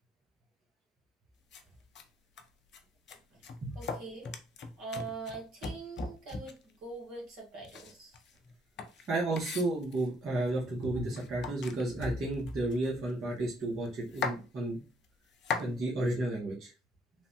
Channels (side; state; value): both; normal; correlation 0.68